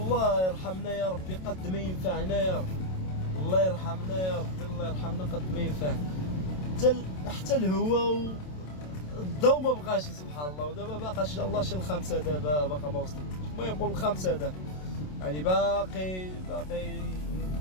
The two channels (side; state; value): right; late; 27 ms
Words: يرحمنا يا ربي قد ما ينفعنا يا رب، الله يرحمنا يا ربي، الله يرحمنا قد ما ينفعنا. حتى الهواء الضوء ما بقاش سبحان الله. ودابا باقا ان شاء الله شي الخمسه، دابا باقا ما وصلتش. المهم نقول الخمسه دابا، يعني باقي